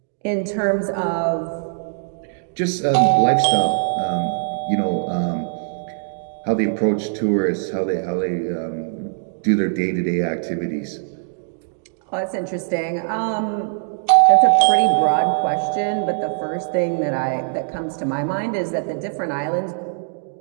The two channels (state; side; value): silent; left; digital silence